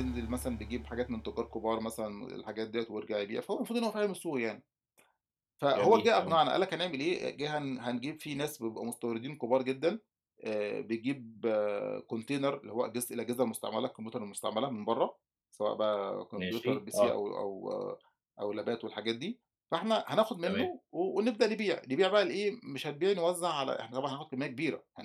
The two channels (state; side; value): identical; both; correlation 1.00